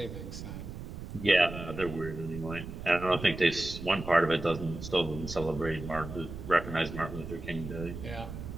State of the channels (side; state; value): right; noise; rumble, 9 dB below the sound